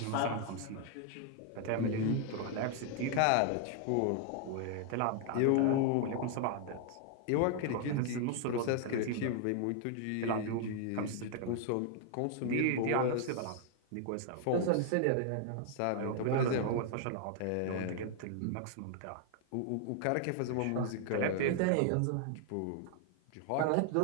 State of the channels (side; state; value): both; different; correlation 0.00